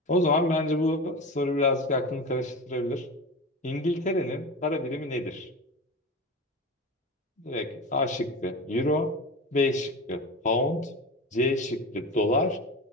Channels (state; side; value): normal; both; correlation 0.28